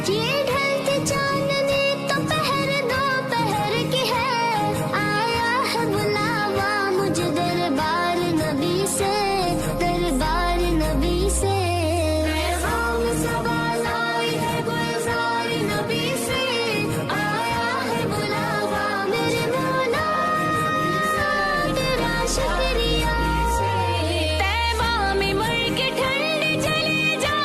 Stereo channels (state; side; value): identical; both; correlation 1.00